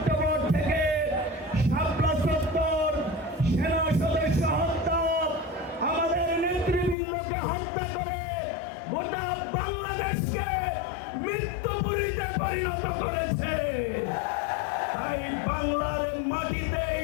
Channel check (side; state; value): right; drops out; at 7.0 s